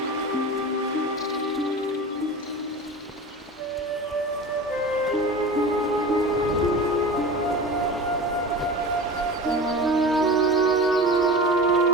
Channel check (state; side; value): normal; both; correlation 0.33